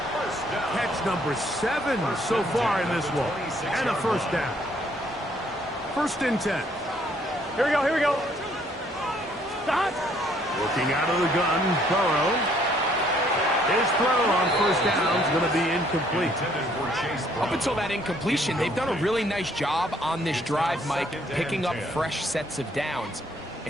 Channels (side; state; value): both; normal; correlation 0.65